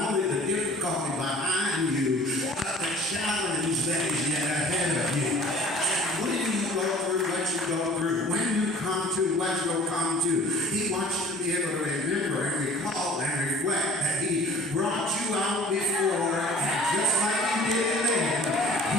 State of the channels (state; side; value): normal; both; correlation 0.48